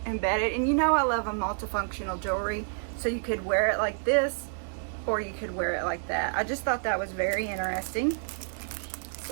embedded, and you know I love a multifunctional jewelry, so you could wear it like this or you could wear it like that. I just thought that was very interesting,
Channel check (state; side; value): silent; left; digital silence